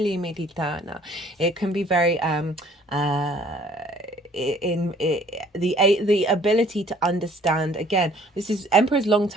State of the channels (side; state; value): both; normal; correlation 0.57